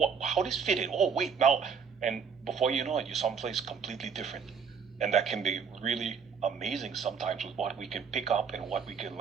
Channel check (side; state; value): left; quieter; 6.3 dB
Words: this fit in? Oh, wait, now. And before you know it, you're someplace completely different. And that can be really amazing sometimes with what we can pick up and what we can